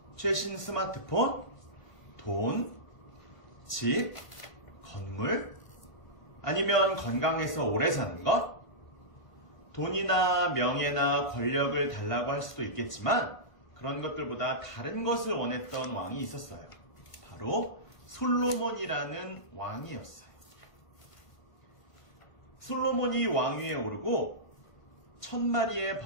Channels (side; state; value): right; late; 1.4 ms